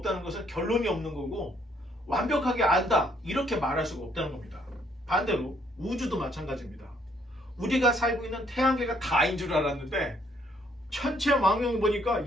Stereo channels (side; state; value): both; normal; correlation 0.67